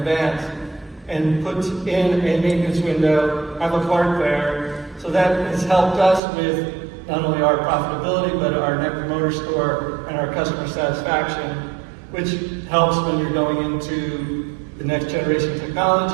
and put in a maintenance window, have a part there. So that has helped us with not only our profitability, but our Net Promoter Score and our customer satisfaction, which helps when you're going into the next generation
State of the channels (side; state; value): left; drops out; at 6.2 s